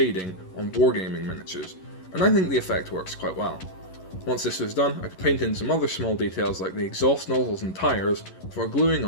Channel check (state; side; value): late; right; 11 ms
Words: on wargaming miniatures, and I think the effect works quite well. Once this was done, I could paint in some other small details like the exhaust nozzles and tyres before gluing